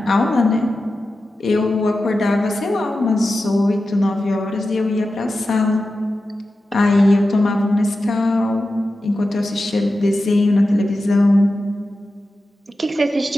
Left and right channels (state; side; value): normal; both; correlation 0.92